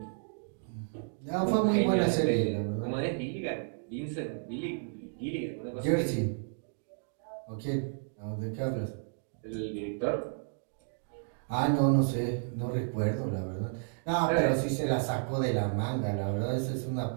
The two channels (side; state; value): left; silent; digital silence